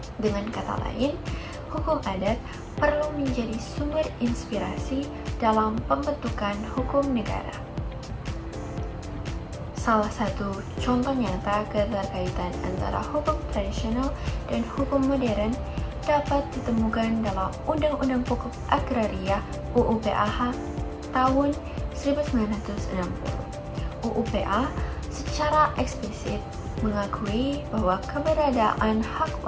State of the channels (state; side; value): identical; both; correlation 1.00